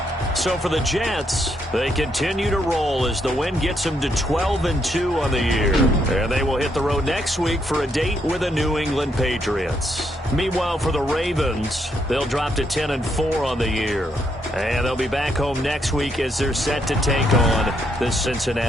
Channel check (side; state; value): both; normal; correlation 0.76